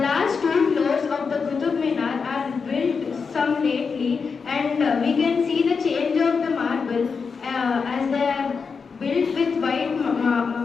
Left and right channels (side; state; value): right; quieter; 5.4 dB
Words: two floors of the Qutub Minar are built some lately, and we can see the change of the marble as they are built with white marble.